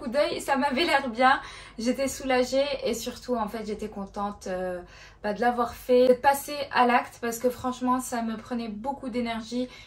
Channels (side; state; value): both; identical; correlation 1.00